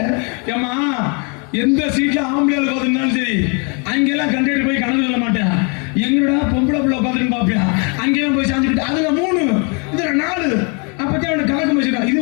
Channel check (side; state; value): right; quieter; 35.0 dB